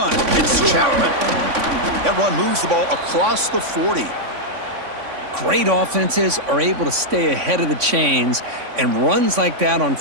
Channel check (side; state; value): left; late; 3.5 ms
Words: it's Chapman. That run moves the ball across the 40. Great offenses are able to stay ahead of the chains, and runs like that on